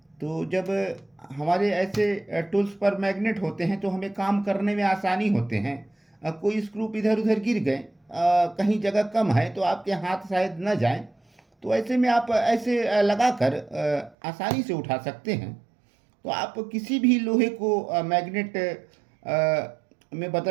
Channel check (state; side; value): drops out; left; at 14.2 s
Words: तो जब हमारे ऐसे टूल्स पर मैग्नेट होते हैं तो हमें काम करने में आसानी होते हैं। कोई स्क्रू इधर उधर गिर गए, कहीं जगह कम है तो आपके हाथ शायद न जाएं, तो ऐसे में आप ऐसे लगाकर आसानी से उठा सकते हैं। तो आप किसी भी लोहे को मैग्नेट में